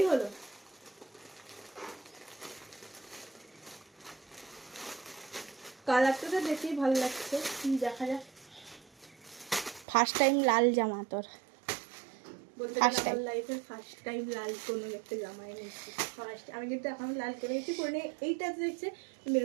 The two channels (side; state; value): left; drops out; at 9.9 s